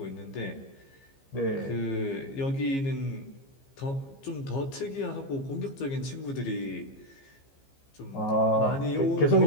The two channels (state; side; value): late; right; 15 ms